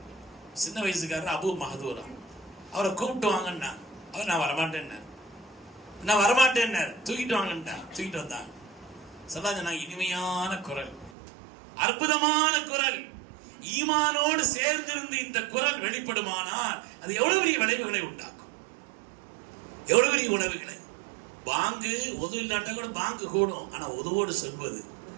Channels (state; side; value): drops out; left; at 11.1 s